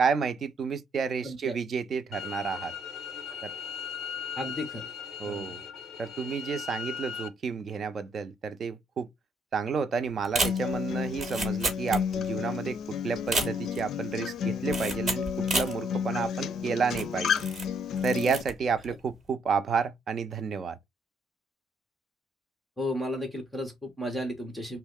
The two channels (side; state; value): both; normal; correlation 0.70